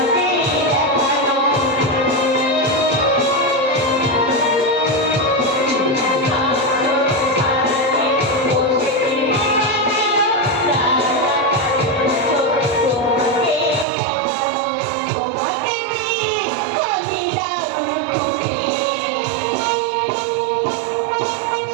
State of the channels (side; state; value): left; drops out; at 13.9 s